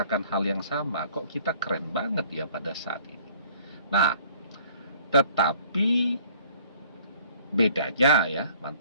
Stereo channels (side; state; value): both; inverted; correlation -0.56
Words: hal yang sama, kok kita keren banget ya pada saat ini. Nah, tetapi bedanya ya,